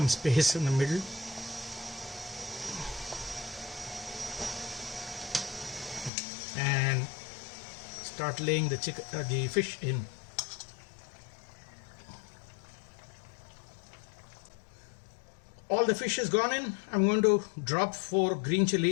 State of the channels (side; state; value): right; drops out; at 6.1 s